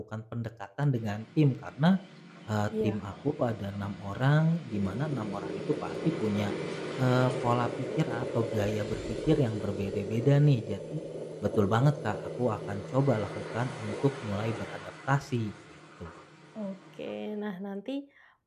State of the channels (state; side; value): identical; both; correlation 1.00